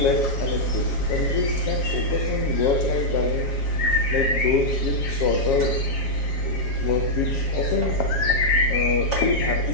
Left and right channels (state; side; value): late; right; 7.4 ms